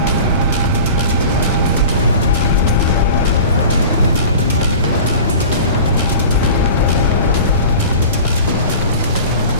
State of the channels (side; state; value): both; inverted; correlation -0.38